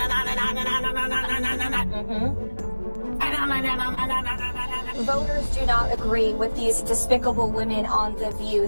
on and on and on and on and on and on and on and on. Voters do not agree with these despicable women on The View.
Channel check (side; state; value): both; inverted; correlation -1.00